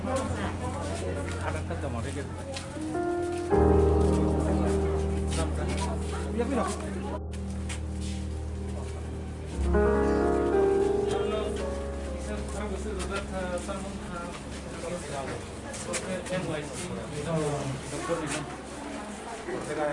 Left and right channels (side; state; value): both; identical; correlation 1.00